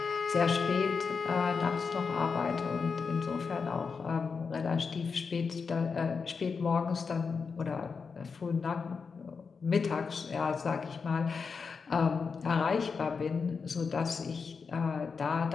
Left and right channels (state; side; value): quieter; right; 5.3 dB